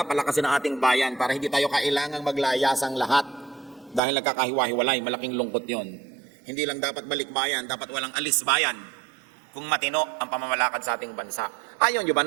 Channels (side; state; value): left; drops out; at 4.0 s